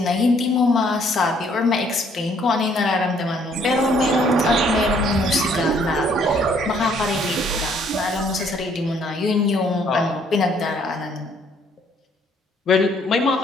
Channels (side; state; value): both; normal; correlation 0.64